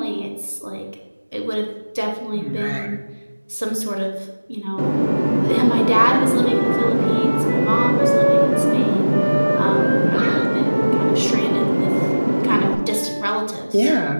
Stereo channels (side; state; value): both; inverted; correlation -1.00